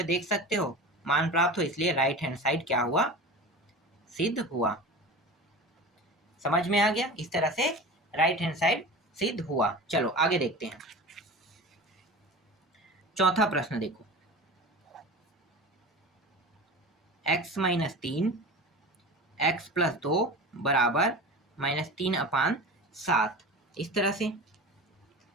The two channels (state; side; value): normal; both; correlation 0.33